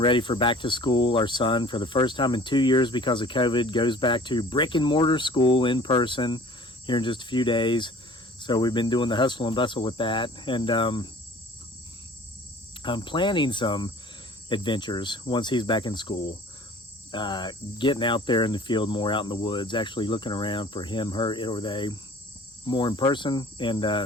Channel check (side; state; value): both; normal; correlation 0.48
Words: for back to school. Our son, for the first time in 2 years because of COVID, goes back to brick and mortar school in person here in just a few days. So we've been doing the hustle and bustle with that. And I'm planning some adventures once he's back in school. Getting out there in the field more, out in the woods, actually looking around for him, her, it, or they more in person. And